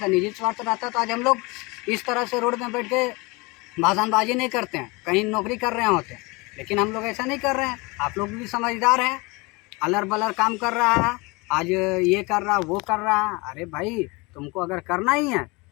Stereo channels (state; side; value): quieter; right; 26.0 dB